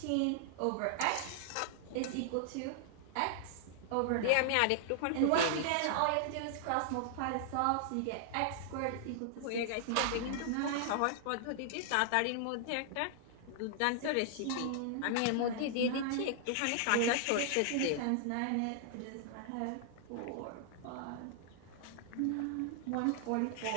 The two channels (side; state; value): both; different; correlation -0.01